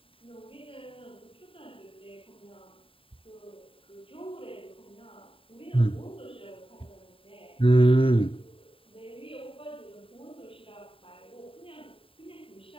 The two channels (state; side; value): late; right; 0.26 ms